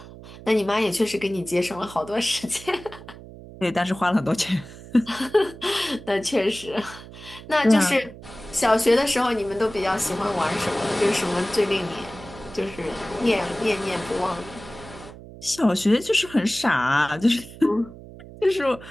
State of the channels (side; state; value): right; noise; hum, 16 dB below the sound